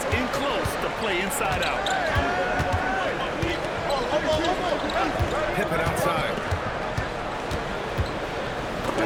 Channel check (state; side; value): identical; both; correlation 1.00